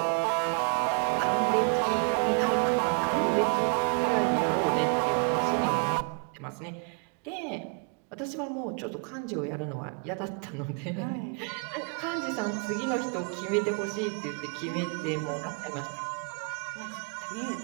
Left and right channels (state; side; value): quieter; left; 38.0 dB